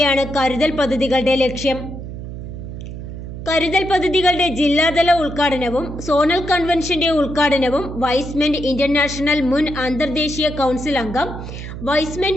കരുതൽ പദ്ധതികളുടെ ലക്ഷ്യം. കരുതൽ പദ്ധതികളുടെ ജില്ലാതല ഉദ്ഘാടനവും സോണൽ കൺവെൻഷന്റെ ഉദ്ഘാടനവും വൈസ്മെൻ ഇന്റർനാഷണൽ മുൻ അന്തർദേശീയ കൗൺസിൽ അംഗം വൈസ്മെൻ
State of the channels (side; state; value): right; noise; hum, 9 dB below the sound